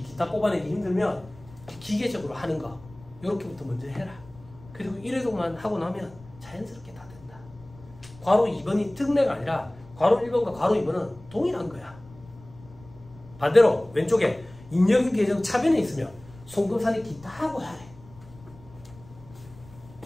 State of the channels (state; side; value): noise; left; rumble, 22 dB below the sound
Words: 기타 뽑아내기 힘들면 기계적으로 하는 거 요렇게부터 먼저 해라. 그리고 1회독만 하고 나면 자연스럽게 다 된다. 괄호 2번이 특례가 아니라 괄호 1번과 괄호 2번은 동일한 거야. 반대로 왼쪽에 잉여금 계정 차변에 있으면 송금사니 기타 하고 하래.